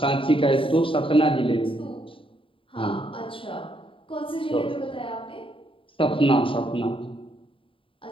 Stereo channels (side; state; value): right; late; 0.25 ms